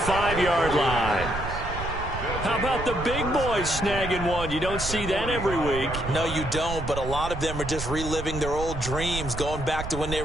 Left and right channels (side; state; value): right; noise; rumble, 7 dB below the sound